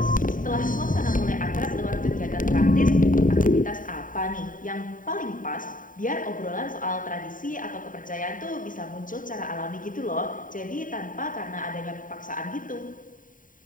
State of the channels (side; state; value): right; late; 0.39 ms